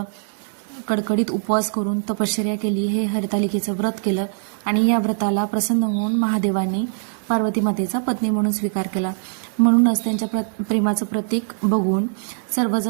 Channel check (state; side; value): silent; left; digital silence